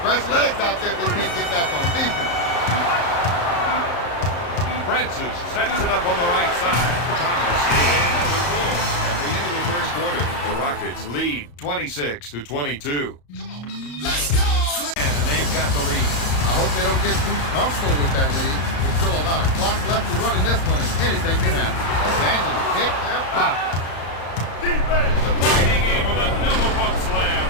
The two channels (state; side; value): late; right; 35 ms